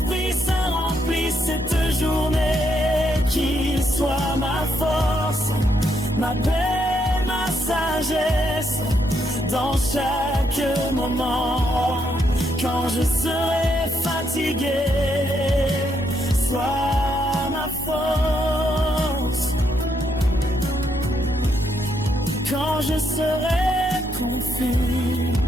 Saint remplisse cette journée, qu'il soit ma force, ma paix, ma sagesse, dans chaque moment. Quand je serai fatigué, sois ma force. Quand je serai confus,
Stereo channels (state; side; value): normal; both; correlation 0.77